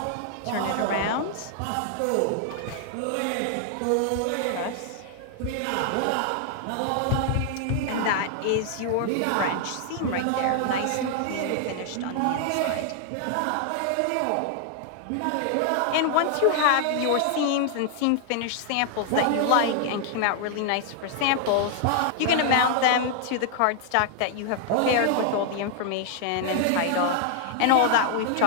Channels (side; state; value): both; different; correlation 0.00